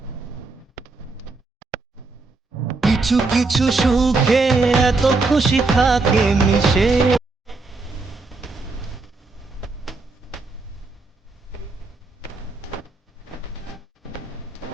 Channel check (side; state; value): left; quieter; 3.7 dB